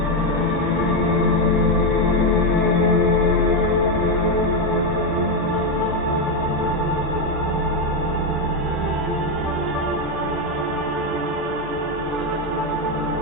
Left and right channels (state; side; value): normal; both; correlation 0.06